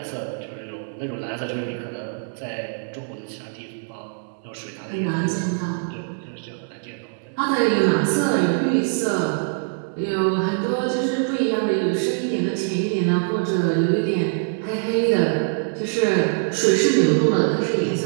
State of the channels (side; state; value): left; silent; digital silence